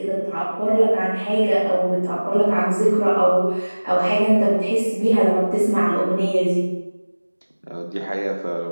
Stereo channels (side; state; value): both; inverted; correlation -1.00